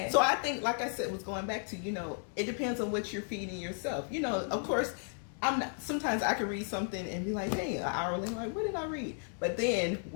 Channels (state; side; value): silent; right; 55 dB below the other